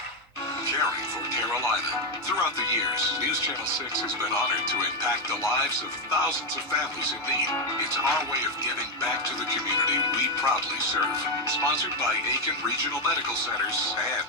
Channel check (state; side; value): normal; both; correlation 0.06